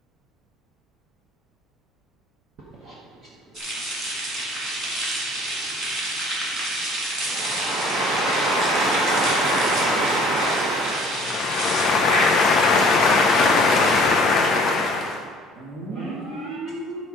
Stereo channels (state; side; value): normal; both; correlation 0.53